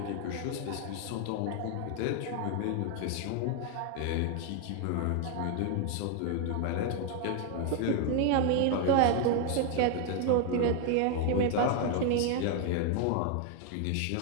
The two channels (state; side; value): different; both; correlation 0.00